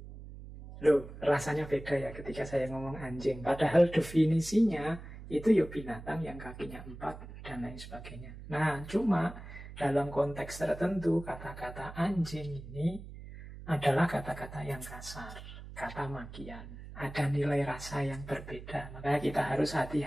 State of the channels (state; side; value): noise; right; hum, 13 dB below the sound